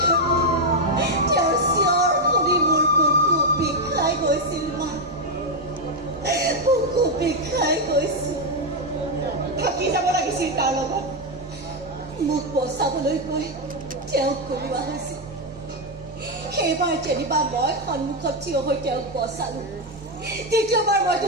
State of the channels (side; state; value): both; normal; correlation 0.03